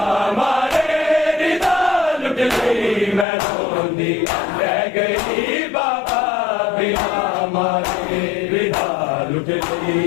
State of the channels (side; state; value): right; drops out; at 3.2 s